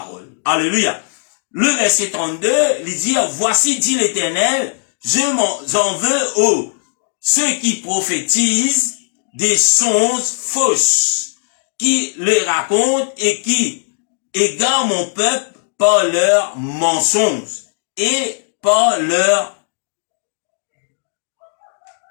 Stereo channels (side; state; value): right; silent; digital silence